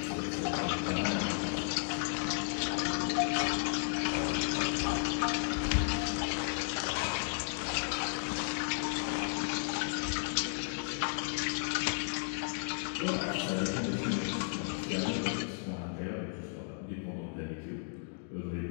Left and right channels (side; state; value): right; silent; digital silence